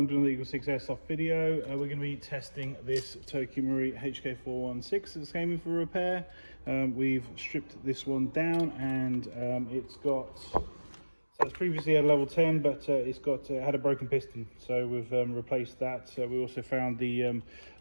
to the EagleSix Airsoft video. We're going to be testing this Tokyo Marui HK416 that's came in for repair. We've stripped this one down and it's got, so it's previously had level 10, but it's got had a broken piston, so we've replaced that. We also found the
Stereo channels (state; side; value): inverted; both; correlation -1.00